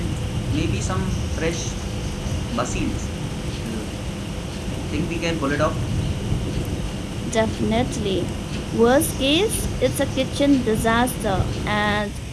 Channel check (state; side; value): identical; both; correlation 1.00